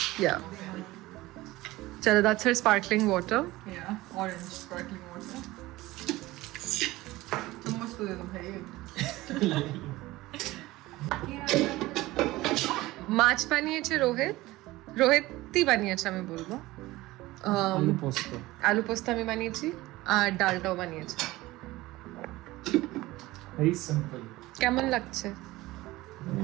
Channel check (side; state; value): left; quieter; 18.6 dB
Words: Yeah. Chalo, that's her sparkling water. Yeah, orange sparkling water. चम्मच तो दे दो भाई। মাছ বানিয়েছে রোহিতই বানিয়েছে আমি বলবো आलू पोस्तो। আলু পোস্ত আমি বানিয়েছি আর ডালটাও বানিয়েছে Very simple. কেমন লাগছে